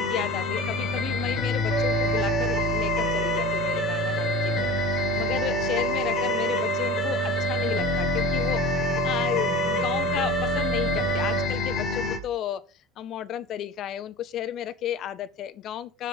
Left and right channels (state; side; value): normal; both; correlation 0.34